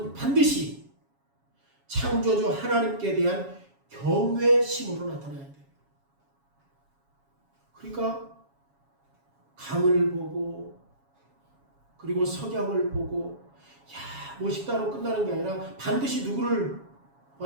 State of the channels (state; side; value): late; left; 7.2 ms